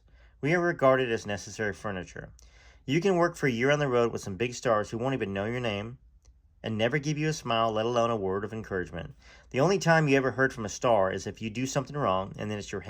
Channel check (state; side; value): identical; both; correlation 1.00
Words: We are regarded as necessary furniture. You can work for a year on the road with some big stars who won't even know your name and never give you a smile, let alone a word of encouragement. The only time you ever heard from a star is if you do something wrong, and then it's your